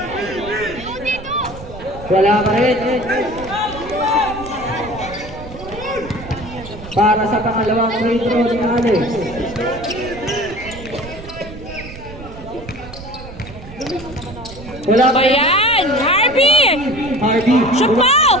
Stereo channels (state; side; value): noise; right; rumble, 14 dB below the sound